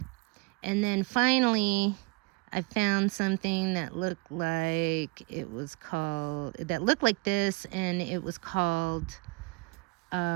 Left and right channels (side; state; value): left; quieter; 28.3 dB